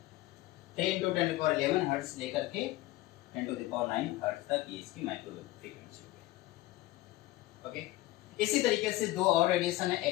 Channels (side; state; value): right; quieter; 17.4 dB